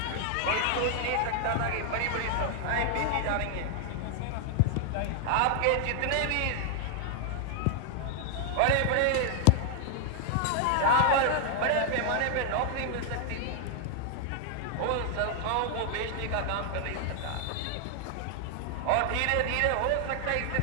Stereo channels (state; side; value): different; both; correlation 0.00